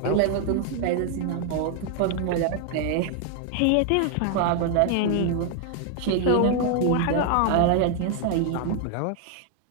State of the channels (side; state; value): both; different; correlation 0.00